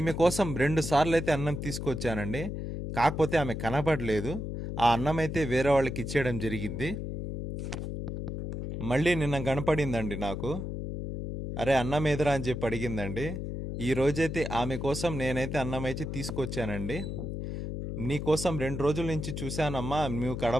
కోసం 2 సార్లు అయితే అన్నం తీసుకొచ్చానండి. కాకపోతే ఆమె కనపడలేదు. ఆ అన్నం అయితే వేరే వాళ్ళకి ఇచ్చేయడం జరిగింది. మళ్ళీ నిన్న కనపడిందండి నాకు. అరే అన్నం ఏదిరా అని చెప్పి అడిగిందండి. ఈ రోజైతే ఆమె కోసం నేనైతే అన్నం అయితే తీసుకొచ్చానండి. నీకోసం 2 రోజుల నుంచి చూశానమ్మా, నువ్వు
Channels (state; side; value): noise; left; hum, 5 dB below the sound